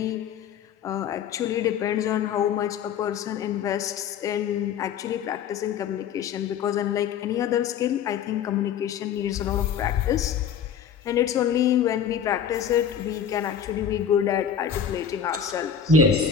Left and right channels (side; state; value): right; quieter; 7.8 dB